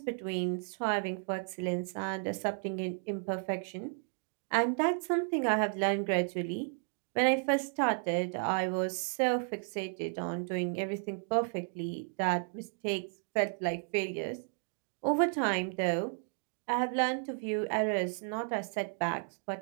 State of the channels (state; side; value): silent; left; 55 dB below the other